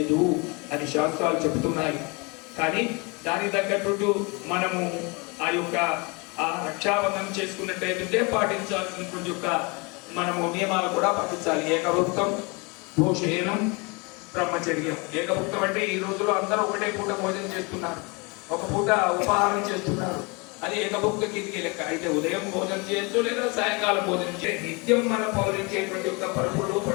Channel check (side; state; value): right; quieter; 29.1 dB